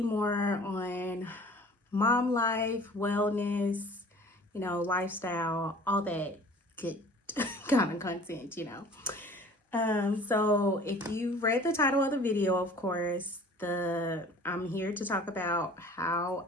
more on mom life, wellness, lifestyle, all that good kind of content. So if you read the title of the video, of course, I'm here to talk about how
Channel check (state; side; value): normal; both; correlation 0.47